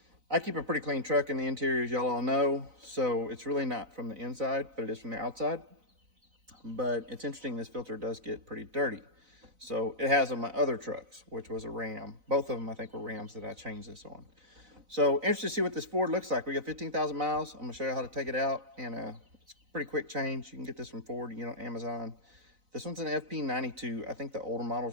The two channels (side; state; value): left; late; 4.0 ms